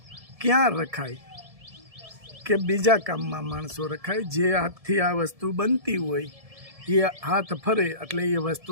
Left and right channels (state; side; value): late; left; 1.7 ms